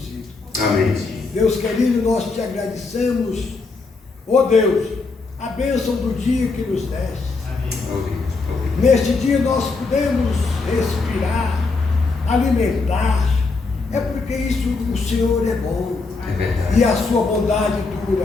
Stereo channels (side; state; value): right; quieter; 4.0 dB